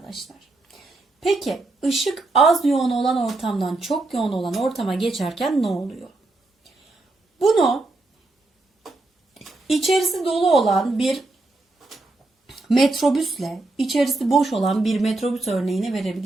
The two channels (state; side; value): quieter; left; 3.0 dB